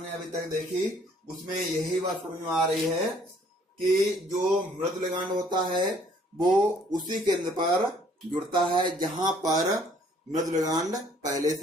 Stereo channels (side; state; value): both; normal; correlation 0.61